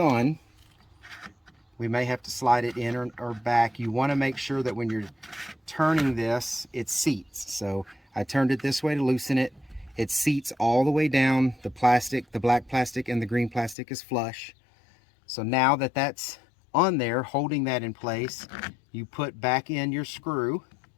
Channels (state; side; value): drops out; right; at 13.8 s